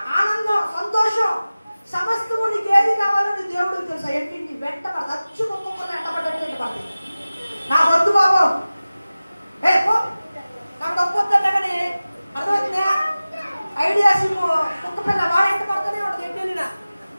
ఆనందం, సంతోషం, సమస్తము నీకు ఏది కావాలని దేవుడికి తెలుసు. అవన్నీ నీ వెంట పడతాయి. హచ్చు కుక్క ఎంటబడ్డట్టు పడతాయి. నా వద్దు బాబు, నాకు డబ్బు వద్దంట కానీ అర్థమవుతుందా? ఐడియా సిమ్ కుక్క పిల్ల వాడు ఎంట పడుతూనే ఉండదు. ఎట్టెళ్ళినా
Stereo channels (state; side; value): inverted; both; correlation -0.97